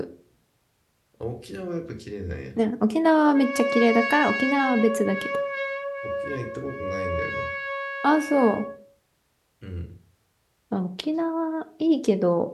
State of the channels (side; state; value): both; identical; correlation 1.00